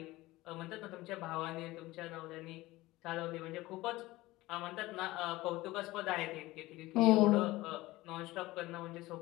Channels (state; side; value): quieter; right; 18.8 dB